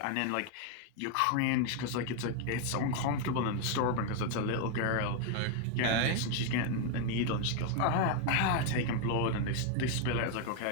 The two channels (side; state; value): both; different; correlation 0.01